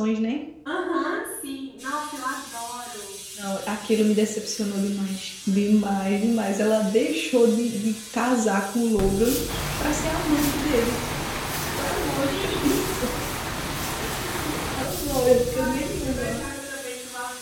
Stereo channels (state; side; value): identical; both; correlation 1.00